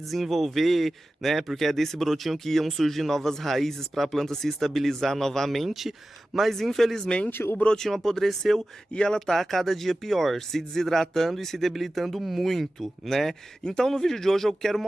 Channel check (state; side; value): normal; both; correlation 0.95